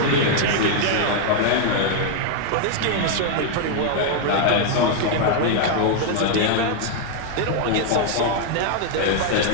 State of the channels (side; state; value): both; different; correlation 0.00